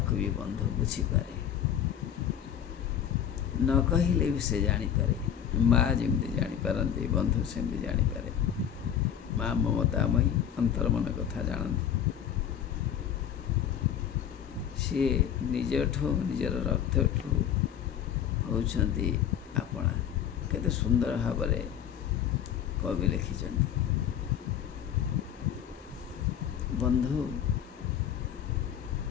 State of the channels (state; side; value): quieter; right; 9.4 dB